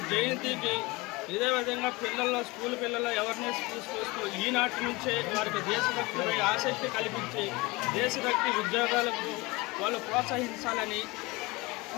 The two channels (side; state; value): right; quieter; 23.7 dB